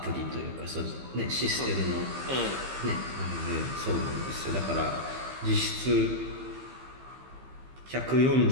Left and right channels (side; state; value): left; late; 15 ms